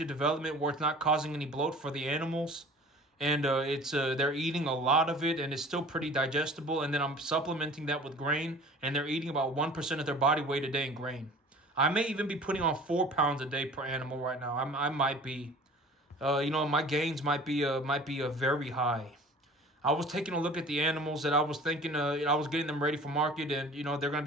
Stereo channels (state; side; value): normal; both; correlation 0.45